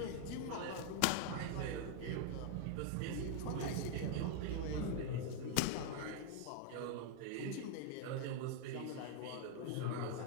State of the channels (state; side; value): different; both; correlation 0.00